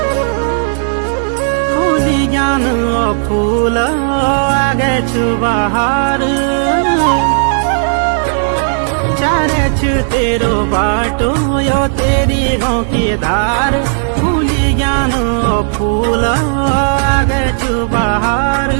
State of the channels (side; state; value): left; silent; digital silence